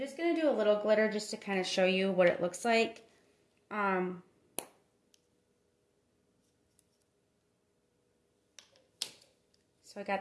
going to do a little glitter just to kind of show you what it looks like. So I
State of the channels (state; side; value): identical; both; correlation 1.00